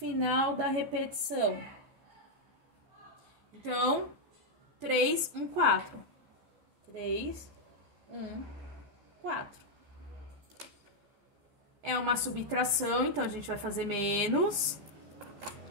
da repetição. Então, 3, 1, 4. 3, 1, 4. É uma subtração, então a gente vai fazer menos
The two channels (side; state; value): left; late; 14 ms